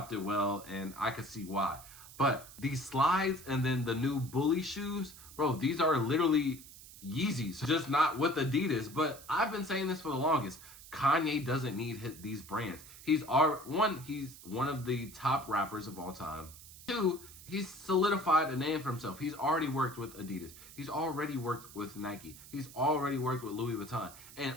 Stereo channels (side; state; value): right; noise; hiss, 17 dB below the sound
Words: well, and I could see why. But these Slides and then the new Bully shoes, bro, these are literally Yeezys, just not with Adidas. But I've been saying this for the longest. Kanye doesn't need these brands. He's one of the top rappers of all time. 2, he's solidified a name for himself. He's already worked with Adidas. He's already worked with Nike. He's already worked with Louis Vuitton. And